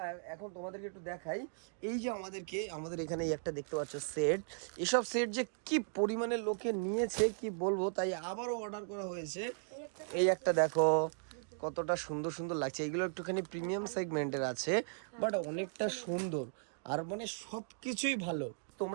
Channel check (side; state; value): left; silent; digital silence